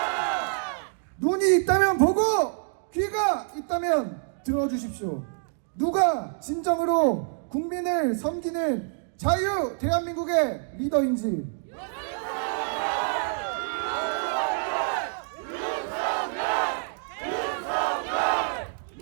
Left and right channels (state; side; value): silent; left; 60 dB below the other